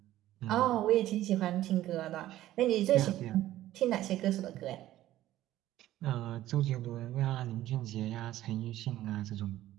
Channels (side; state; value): left; quieter; 14.3 dB